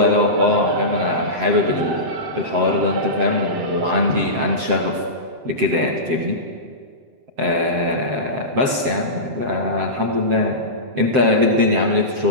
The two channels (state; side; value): late; left; 7.7 ms